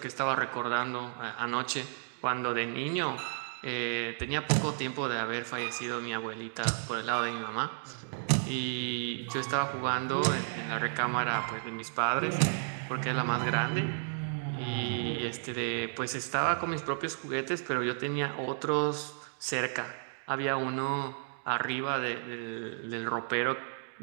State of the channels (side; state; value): left; silent; digital silence